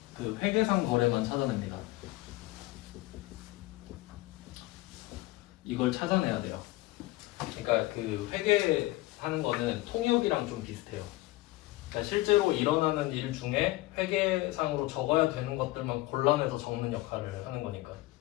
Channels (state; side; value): quieter; right; 18.7 dB